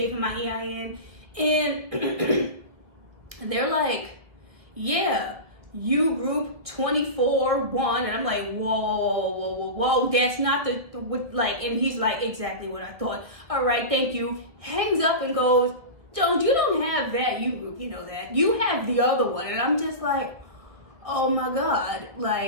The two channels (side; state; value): left; late; 1.8 ms